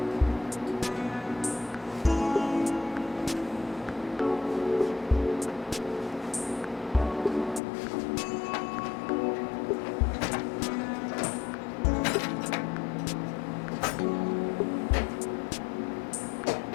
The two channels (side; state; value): right; drops out; at 7.6 s